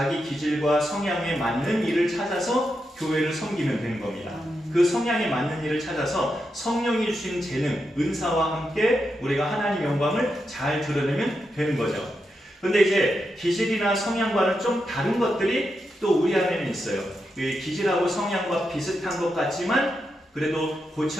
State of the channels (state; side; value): normal; both; correlation 0.86